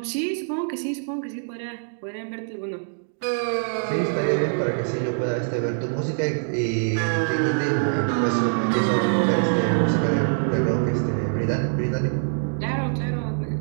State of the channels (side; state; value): left; silent; digital silence